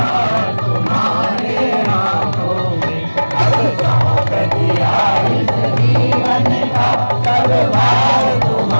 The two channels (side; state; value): both; inverted; correlation -1.00